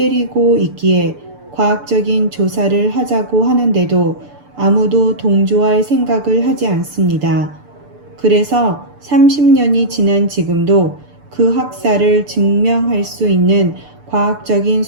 있기에 과학적인 조사를 하자고 하는데도 아무도 동조할 생각을 하지 않습니다. 그래서 30년이 지난 지금도 그 학살을 증명할 수 있는 과학적인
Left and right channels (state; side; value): late; left; 6.8 ms